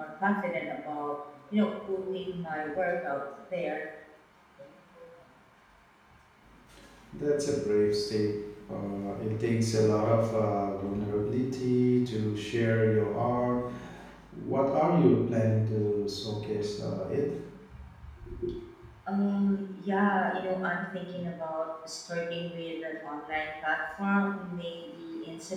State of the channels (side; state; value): both; identical; correlation 1.00